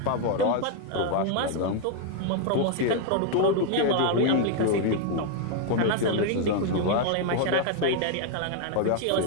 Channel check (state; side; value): different; both; correlation 0.00